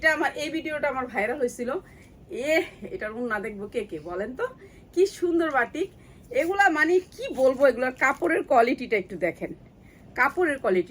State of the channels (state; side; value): identical; both; correlation 1.00